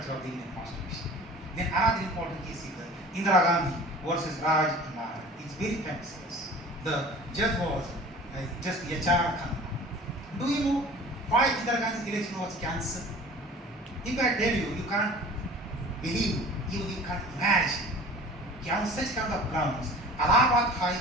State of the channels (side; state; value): both; normal; correlation 0.43